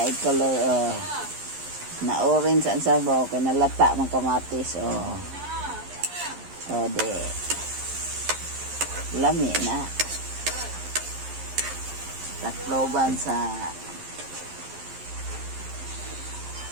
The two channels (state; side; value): late; left; 11 ms